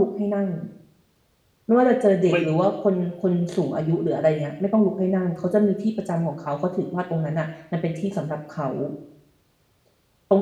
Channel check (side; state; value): both; identical; correlation 1.00